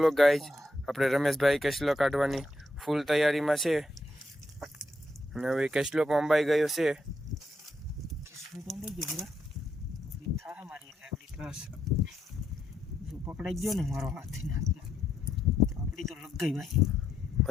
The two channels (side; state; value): both; normal; correlation 0.80